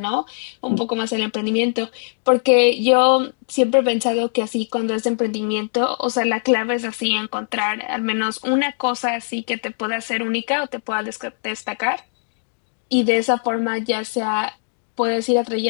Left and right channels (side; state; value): right; silent; 65 dB below the other